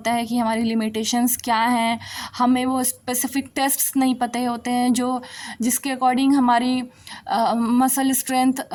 है कि हमारी लिमिटेशंस क्या हैं, हमें वो स्पेसिफिक टेस्ट्स नहीं पता होते हैं जिसके अकॉर्डिंग हमारी मसल स्ट्रेंथ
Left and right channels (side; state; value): both; identical; correlation 1.00